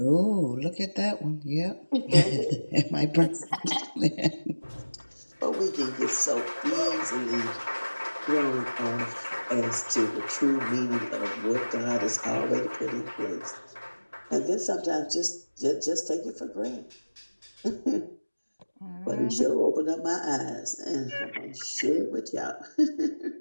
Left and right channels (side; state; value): both; inverted; correlation -1.00